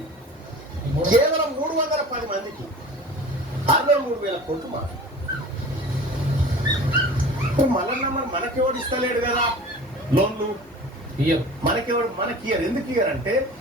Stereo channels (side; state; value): both; normal; correlation 0.40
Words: కేవలం 310 మందికి 63,000 కోట్లు మాఫీ. మళ్ళా మనకెవడు ఇస్తలేడు కదా లోన్లు, మనకి ఎందుకు ఇయ్యారంటే